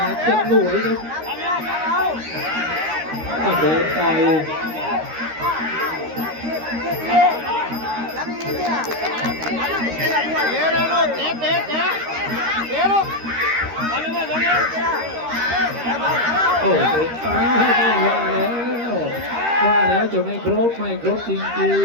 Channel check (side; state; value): left; late; 13 ms